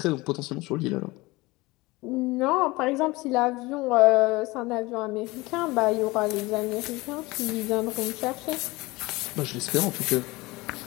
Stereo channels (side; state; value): right; quieter; 21.9 dB